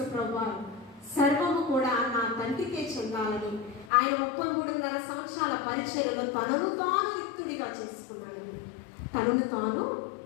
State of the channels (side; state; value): right; drops out; at 3.9 s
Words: ప్రభువు సర్వము కూడా నా తండ్రికే చెందాలని ఆయన 33.5 సంవత్సరాల పరిచర్యలో తనను తాను రిక్తుడిగా చేసుకున్నాడండి. తనను తాను